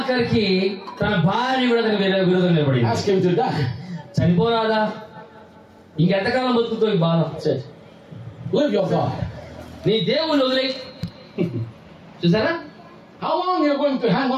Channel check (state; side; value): identical; both; correlation 1.00